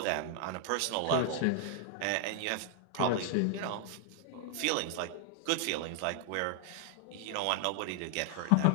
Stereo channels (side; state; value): both; different; correlation 0.00